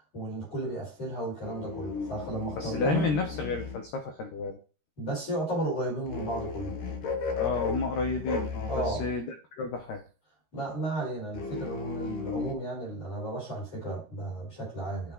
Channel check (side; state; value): right; late; 13 ms